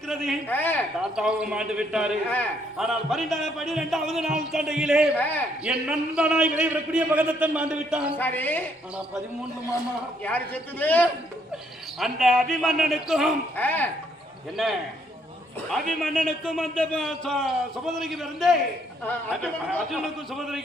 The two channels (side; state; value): both; normal; correlation 0.70